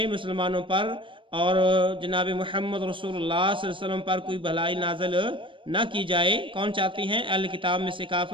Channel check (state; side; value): late; left; 0.25 ms